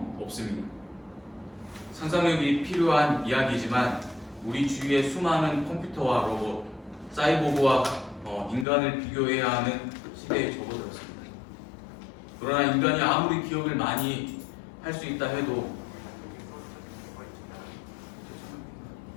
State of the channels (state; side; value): drops out; right; at 8.7 s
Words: 없습니다. 상상력이 필요한 이야기지만 우리 주위의 수많은 컴퓨터와 로봇, 사이보그와 인간을 비교해야 하는 시대에 접어들었습니다. 그러나 인간이 아무리 기억을 많이 할 수 있다 해도